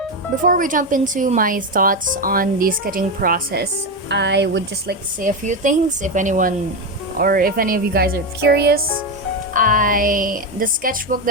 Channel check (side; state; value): both; normal; correlation 0.12